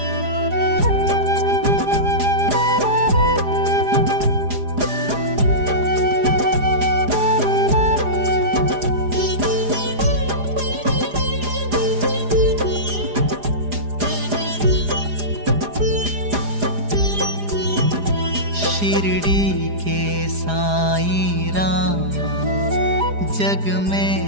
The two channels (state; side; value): late; left; 4.9 ms